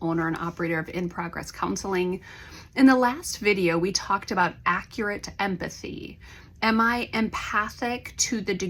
owner and operator of In Progress Counseling. In the last video, we talked about accurate empathy. Am I empathic to the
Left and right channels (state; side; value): identical; both; correlation 1.00